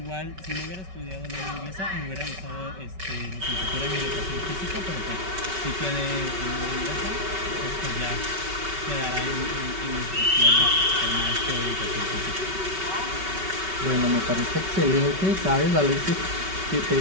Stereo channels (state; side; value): late; left; 5.3 ms